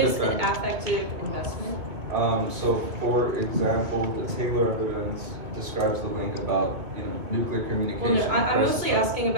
is defend. an affective investment? So for example, the Taylor evidence describes the link about nuclear Well, communication. no, I'm versus mostly asking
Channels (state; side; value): late; left; 2.4 ms